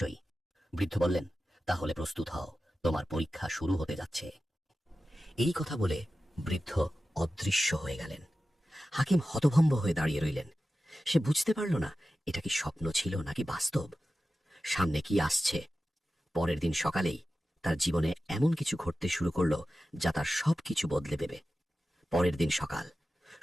বৃদ্ধ বললেন, তাহলে প্রস্তুত হও, তোমার পরীক্ষা শুরু হতে যাচ্ছে। এই কথা বলে বৃদ্ধ অদৃশ্য হয়ে গেলেন। হাকিম হতভম্ব হয়ে দাঁড়িয়ে রইলেন। সে বুঝতে পারল না, এটা কি স্বপ্ন ছিল নাকি বাস্তব। সামনে কি আসছে? পরের দিন সকালেই তার জীবনে এমন কিছু ঘটতে শুরু করল, যা তার সবকিছু বদলে দেবে। পরের দিন সকাল,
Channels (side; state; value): both; normal; correlation 0.94